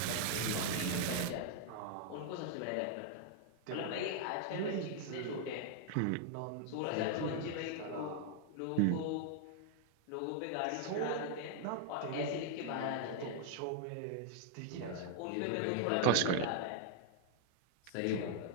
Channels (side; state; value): both; different; correlation 0.00